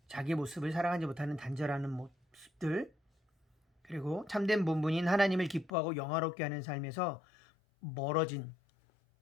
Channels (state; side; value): drops out; right; at 5.7 s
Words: 자기 모습을 사랑하지 못하는 단절하는 모습들, 그리고 참된 본분인 하나님을 기뻐하고 영화롭게 하는 삶에서 멀어진